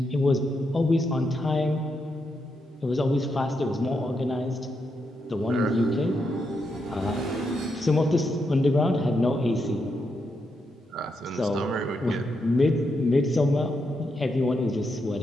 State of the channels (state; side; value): normal; both; correlation 0.82